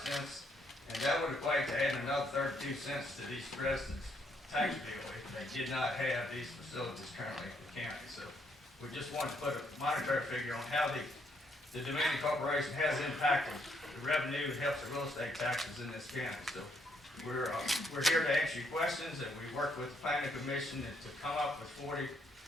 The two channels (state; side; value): normal; both; correlation 0.73